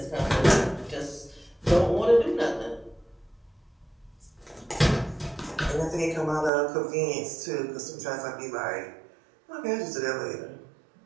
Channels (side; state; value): left; drops out; at 6.5 s